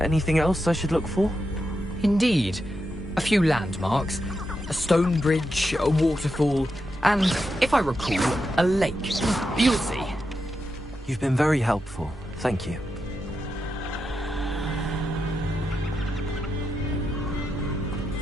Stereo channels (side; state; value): both; normal; correlation 0.86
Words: else I should look for? Indeed. A few landmarks. A stone bridge, a waterfall, and, if I recall, a lake. You'll see. You've been very helpful. Thank you.